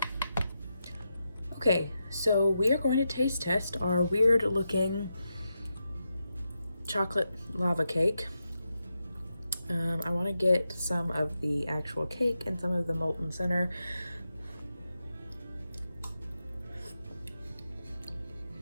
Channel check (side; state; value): both; inverted; correlation -0.87